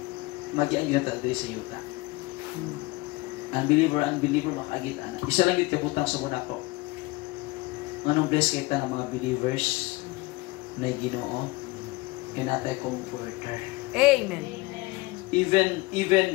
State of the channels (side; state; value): right; quieter; 22.4 dB